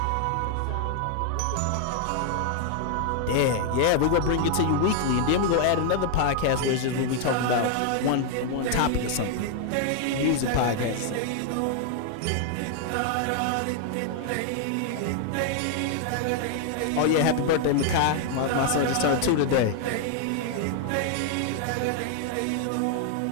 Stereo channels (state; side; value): different; both; correlation 0.00